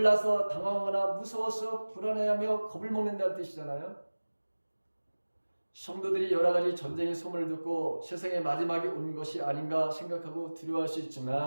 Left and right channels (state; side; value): inverted; both; correlation -1.00